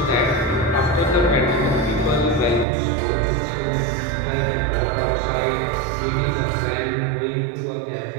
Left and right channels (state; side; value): drops out; left; at 2.7 s